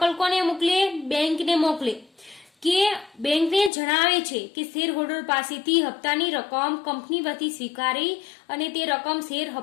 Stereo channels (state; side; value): drops out; right; at 3.7 s